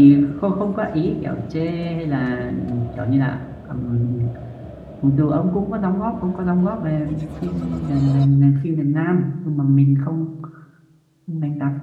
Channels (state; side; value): identical; both; correlation 1.00